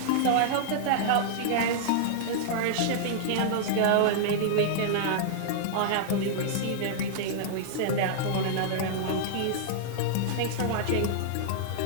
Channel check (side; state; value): both; different; correlation -0.01